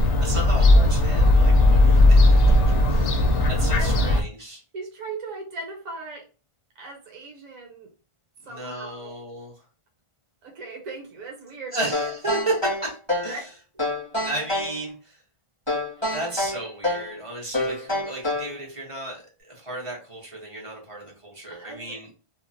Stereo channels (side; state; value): left; late; 1.5 ms